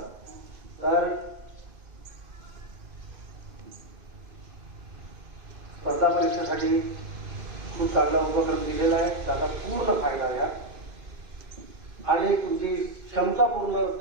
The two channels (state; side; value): late; left; 2.5 ms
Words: तर स्पर्धा परीक्षेसाठी खूप चांगला उपक्रम दिलेला आहे. त्याचा पूर्ण फायदा घ्या आणि तुमची क्षमता पूर्ण